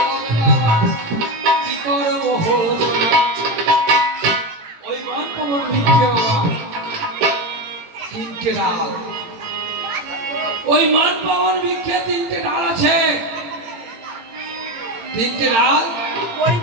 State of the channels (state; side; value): late; left; 18 ms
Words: বাবা কি করব হলো ওই মন পবন মিথ্যে বাবা তিনটে ডাল ওই মন পবন মিথ্যে তিনটে ডাল আছে তিনটে ডাল